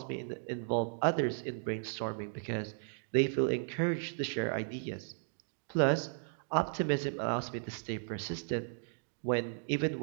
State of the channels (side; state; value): left; silent; digital silence